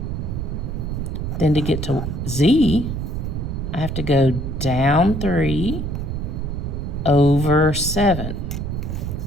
Then to get to Z, I have to go down 3 over 7.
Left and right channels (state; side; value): noise; right; rumble, 3 dB below the sound